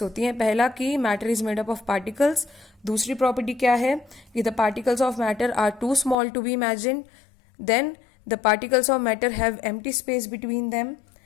होती हैं। पहला कि matter is made up of particles. दूसरी प्रॉपर्टी क्या है कि the particles of matter are too small to be imagine. Then the particles of matter have empty space between them.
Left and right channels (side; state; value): right; drops out; at 6.2 s